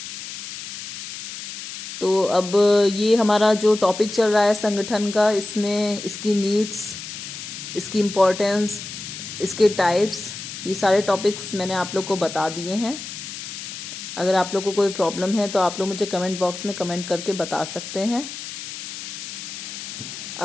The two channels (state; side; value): noise; left; hiss, 9 dB below the sound